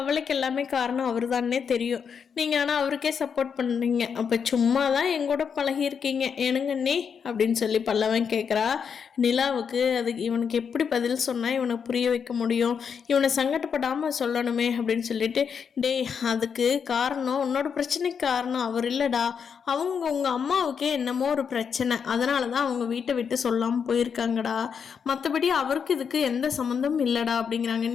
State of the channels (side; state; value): right; quieter; 6.7 dB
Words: எல்லாமே காரணம் அவர் தானே தெரியும். நீங்கள் ஆனால் அவருக்கே சப்போர்ட் பண்ணுறீங்க. அப்போ சும்மா தான் எங்கூட பழகியிருக்கீங்க ஏனுங்க அண்ணி அப்படின்னு சொல்லி பல்லவன் கேட்குறா. நிலாவுக்கு அதுக்கு இவனுக்கு எப்படி பதில் சொன்னால் இவனுக்கு புரிய வைக்க முடியும், இவனை சங்கடப்படாமல் சொல்லணுமே அப்படின்னு சொல்லிட்டு, டேய் அதுக்கு காரணம் உன்னோட பிரச்சனைக்கு காரணம் அவர் இல்லைடா, அவங்க உங்கள் அம்மாவுக்கே என்னமோ ஒரு பிரச்சனை, அதனால தான் அவங்க வீட்டை விட்டு சொல்லாமல் போயிருக்காங்கடா, மற்றபடி அவருக்கு இதுக்கு எந்த சம்மந்தமும் இல்லைடா அப்படிங்கிறாங்க.